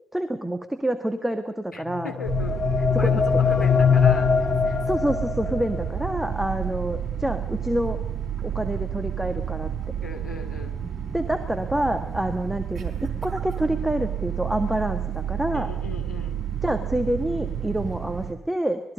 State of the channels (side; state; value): both; normal; correlation 0.76